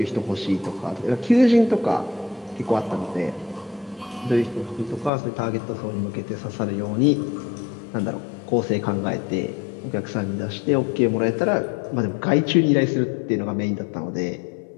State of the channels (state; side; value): drops out; right; at 5.1 s